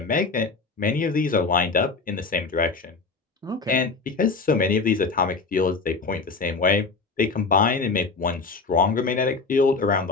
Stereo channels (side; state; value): right; quieter; 4.3 dB